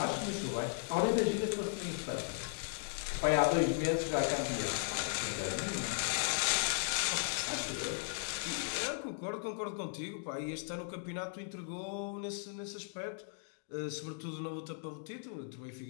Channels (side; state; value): right; silent; digital silence